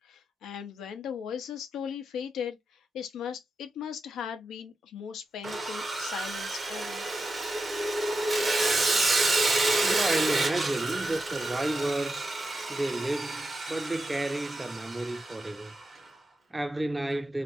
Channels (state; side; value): normal; both; correlation 0.88